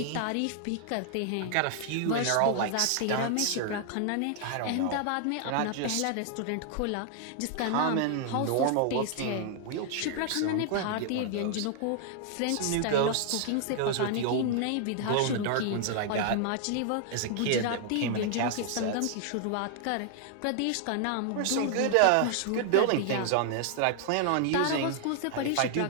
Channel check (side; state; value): both; different; correlation 0.00